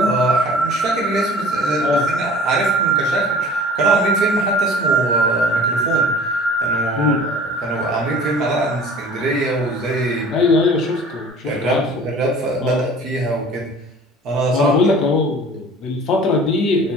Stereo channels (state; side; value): normal; both; correlation 0.46